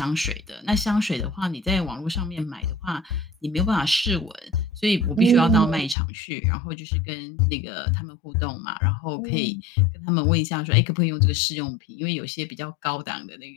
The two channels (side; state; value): right; drops out; at 6.0 s